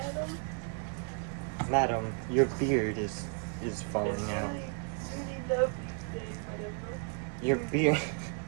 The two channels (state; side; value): quieter; left; 39.7 dB